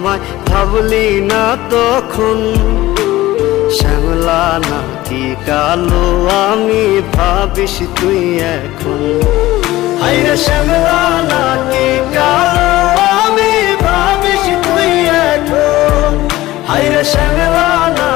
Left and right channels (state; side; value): quieter; right; 17.0 dB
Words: ভাবলি না তখন, শ্যামলা নাকি কালো আমি ভাবিস তুই এখন। হায়রে শ্যামলা নাকি কালো আমি ভাবিস তুই এখন। হায়রে শ্যামলা